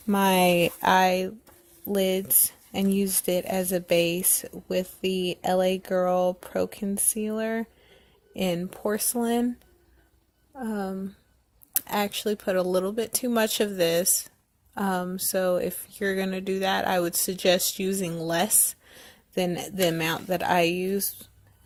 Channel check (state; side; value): identical; both; correlation 1.00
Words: my eyelids and used it as a base with the LA Girl Pro Concealer in porcelain. I actually put a little bit too much of this. So if you're going to do that, I would suggest using less than the amount that I use.